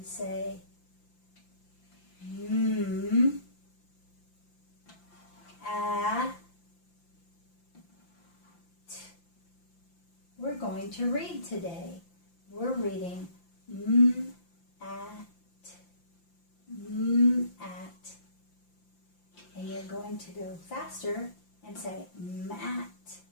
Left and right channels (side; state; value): right; late; 5.8 ms